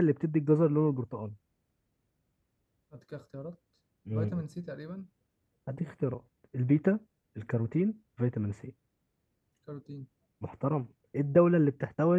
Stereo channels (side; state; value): both; identical; correlation 1.00